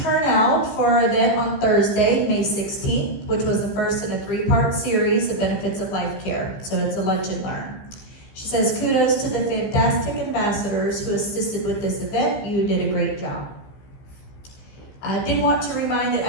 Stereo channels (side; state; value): right; late; 15 ms